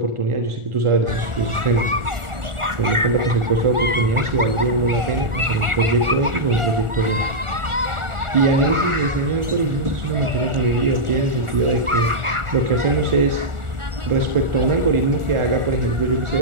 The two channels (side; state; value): left; late; 1.4 ms